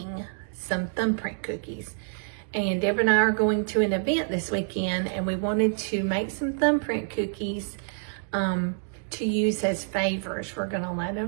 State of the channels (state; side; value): silent; left; 60 dB below the other